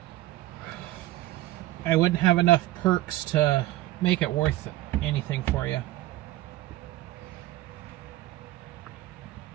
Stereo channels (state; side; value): quieter; left; 16.4 dB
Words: I wouldn't have enough perks to make it worth anything for you.